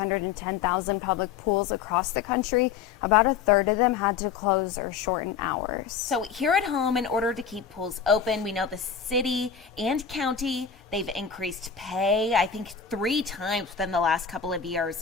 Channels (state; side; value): quieter; right; 7.0 dB